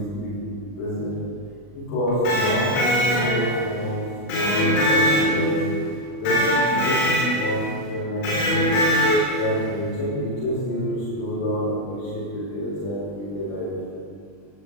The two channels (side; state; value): right; late; 40 ms